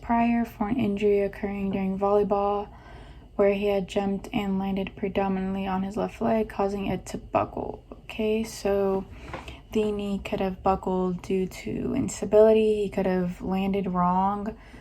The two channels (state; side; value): identical; both; correlation 1.00